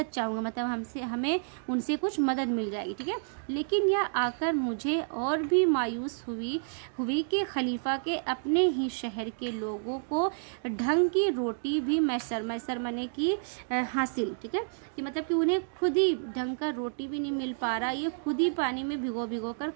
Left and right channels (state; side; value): silent; left; digital silence